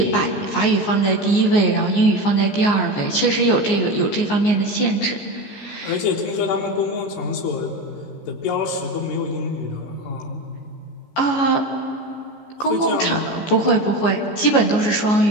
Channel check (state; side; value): late; right; 14 ms